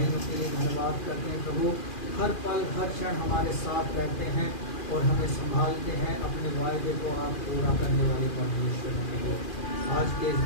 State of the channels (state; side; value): late; right; 2.4 ms